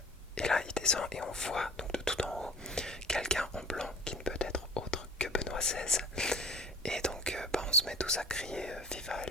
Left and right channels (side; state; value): both; normal; correlation 0.46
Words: là il descend et on voit donc de tout en haut quelqu'un en blanc qui ne peut être autre que Benoît XVI. Et donc on se met tous à crier Viva